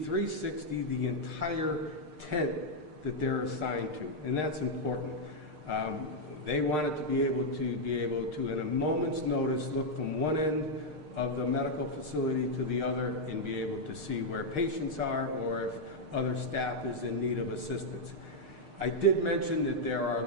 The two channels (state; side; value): late; left; 6.6 ms